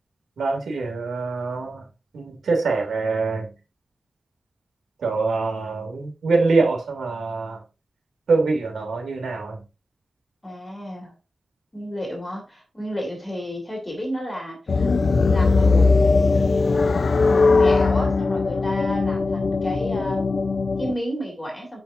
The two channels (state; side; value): normal; both; correlation 0.92